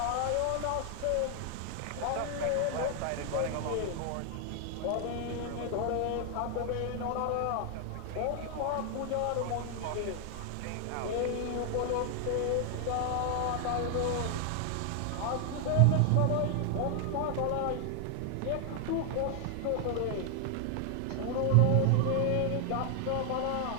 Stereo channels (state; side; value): different; both; correlation 0.00